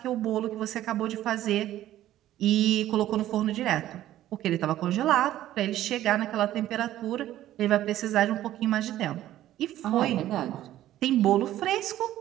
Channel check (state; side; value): quieter; left; 13.4 dB